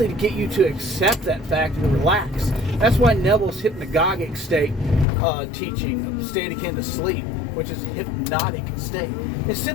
to get you to accept that fact and relax. That's why Neville's hypnagogic state teaching, state akin to sleep, which is a hypnotic state, it's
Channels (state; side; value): drops out; right; at 5.1 s